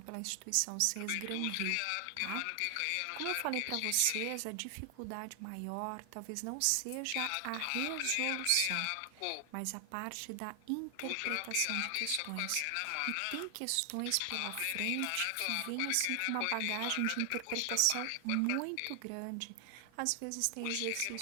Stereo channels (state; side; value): different; both; correlation 0.00